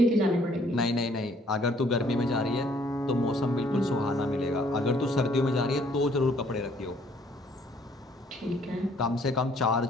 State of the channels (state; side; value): normal; both; correlation 0.62